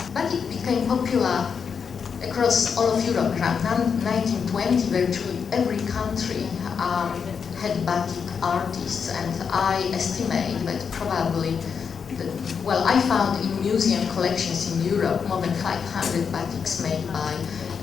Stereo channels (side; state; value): right; quieter; 6.4 dB